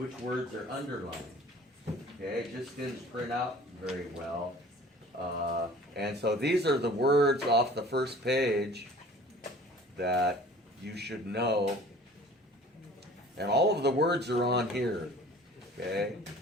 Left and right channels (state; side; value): normal; both; correlation 0.47